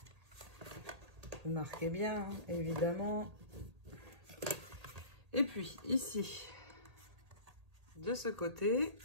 Vous marquez bien, hein, évidemment. Et puis, ici, de ce côté,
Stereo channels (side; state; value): left; late; 1.8 ms